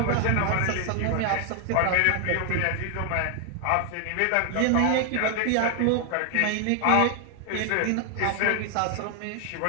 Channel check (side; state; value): both; different; correlation 0.00